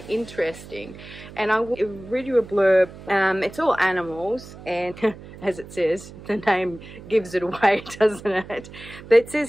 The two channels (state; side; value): noise; right; hum, 16 dB below the sound